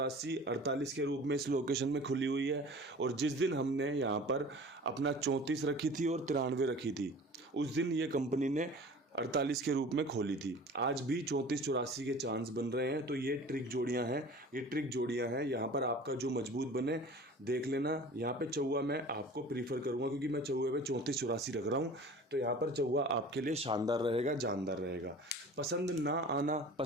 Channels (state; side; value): normal; both; correlation 0.42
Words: 48 के रूप में इस लोकेशन में खुली हुई है, और जिस दिन हमने यहाँ पर अपना 34 रखी थी और 93 रखी थी, उस दिन ये कंपनी ने 48 के रूप में खोली थी। आज भी 34-84 के चांस बन रहे हैं। तो ये ट्रिक जोड़ियां हैं, ये ट्रिक जोड़ियां हैं। यहाँ पर आपका जो मजबूत बने देख लेना। यहाँ पे चौवा मैं आपको प्रीफर करूँगा, क्योंकि मैं चौवे पे 34-84 रख रहा हूँ। तो यहाँ पर चौवा आपके लिए शानदार रहेगा, जानदार रहेगा। पसंद ना आना,